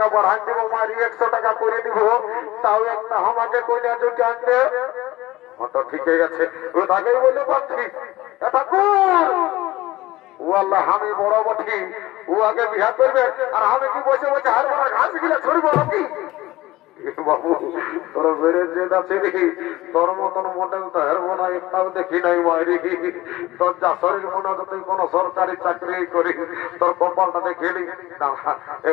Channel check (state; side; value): quieter; right; 17.7 dB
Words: বাড়াই দিব মারি ১০০ টাকা করে দিব তাও একটা আমাকে কন্যা জুটি আনতে। অত ঠিকই আছে। ওটাকেই বলে পাচ্ছি ঠাকুর ও আল্লাহ আমি বড় বঠি ও আগে বিহা করবে আর আমি কি বসে বসে হার মারা ঘাস গিলা ছড়িব নাকি। বাবু তোর বেড়ে যেটা আছে দেখি তোর মতন মডেল তো হেরবো না একটাও দেখি নাই মারি। তোর যা শরীর মনে হতো তুই কোন সরকারি চাকরি করি তোর কপালটা দেখিনি না